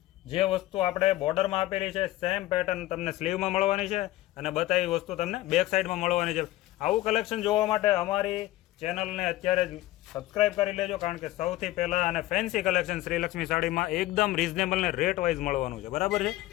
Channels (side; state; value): right; quieter; 16.4 dB